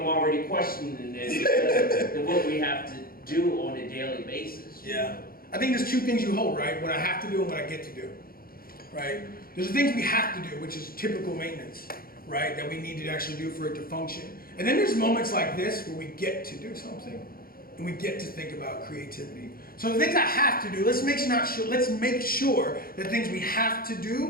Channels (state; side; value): late; right; 0.43 ms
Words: questioning this than what we have to do on a daily basis. Yeah. I think there's two things you hold, right? What I have to do and what I get to do, right? There's the things we have to do, which is typical maintenance, right? That we need to actually do for it to function. And then there's moments like this where we get to do something and we get to think about creativity. So the things I have to do, let's make sure that things we have to